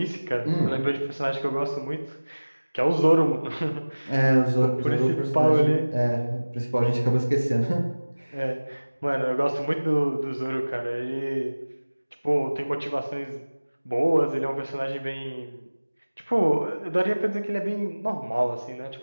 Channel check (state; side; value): inverted; both; correlation -1.00